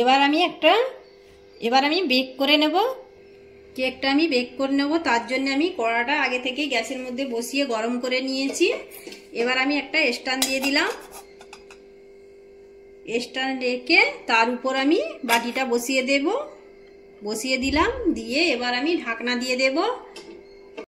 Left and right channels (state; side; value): identical; both; correlation 1.00